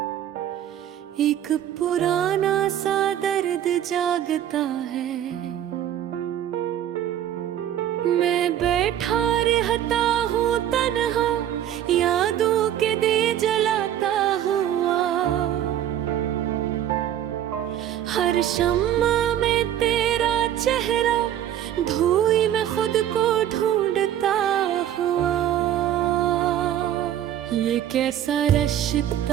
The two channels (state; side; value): quieter; left; 11.0 dB